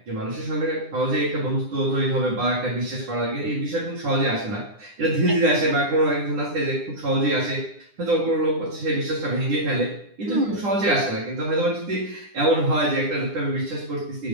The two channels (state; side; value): late; left; 9.9 ms